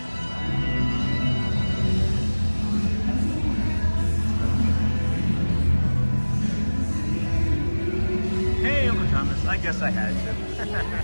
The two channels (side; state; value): both; inverted; correlation -1.00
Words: Hey, Uncle Thomas. I guess I had to.